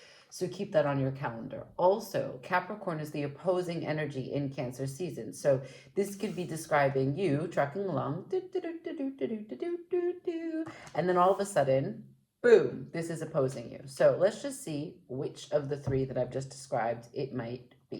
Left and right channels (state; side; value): identical; both; correlation 1.00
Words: So keep that on your calendar. Also, Capricorn is the opposing energy in Cancer season. So this could be describing you trucking along, and then all of a sudden, boom, this is opposing you. So let's just see which of the three that I've just described it might